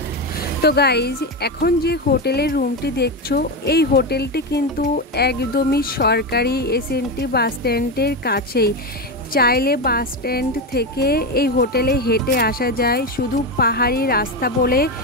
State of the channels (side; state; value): both; normal; correlation 0.14